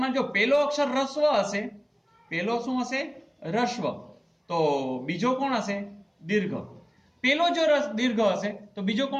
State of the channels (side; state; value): both; identical; correlation 1.00